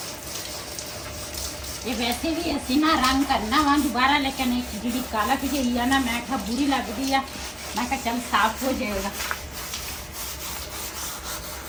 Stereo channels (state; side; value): identical; both; correlation 1.00